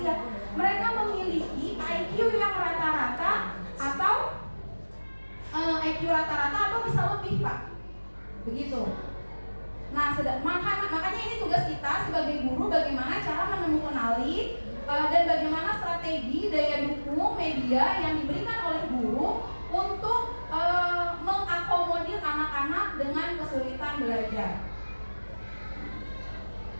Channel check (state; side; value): inverted; both; correlation -1.00